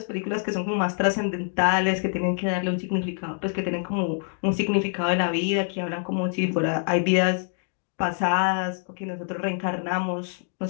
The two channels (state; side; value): silent; right; 61 dB below the other